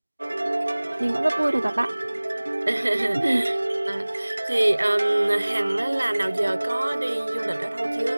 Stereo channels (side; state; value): both; inverted; correlation -1.00